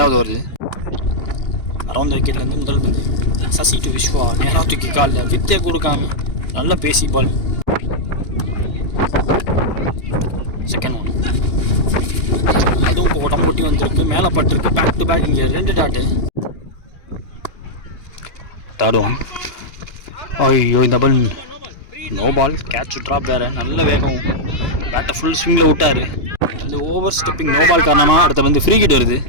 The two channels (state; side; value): late; right; 2.9 ms